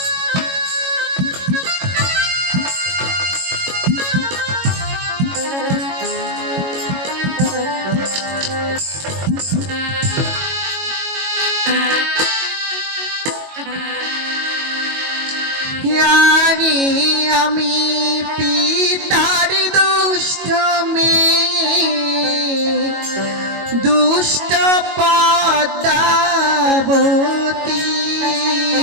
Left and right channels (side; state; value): left; late; 22 ms